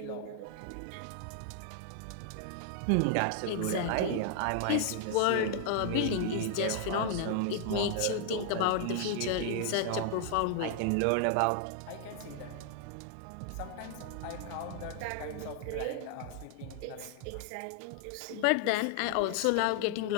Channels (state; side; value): different; both; correlation 0.00